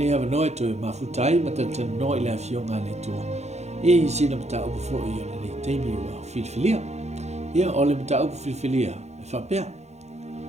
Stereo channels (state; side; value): late; left; 0.32 ms